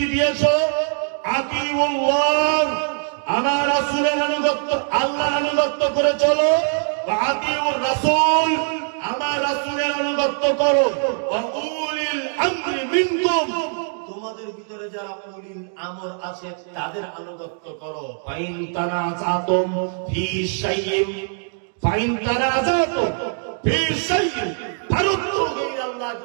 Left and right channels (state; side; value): silent; left; 58 dB below the other